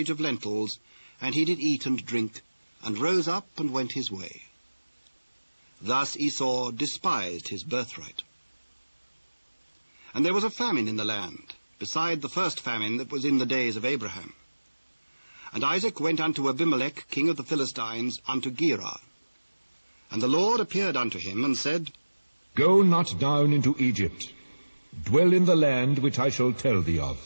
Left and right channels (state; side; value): inverted; both; correlation -1.00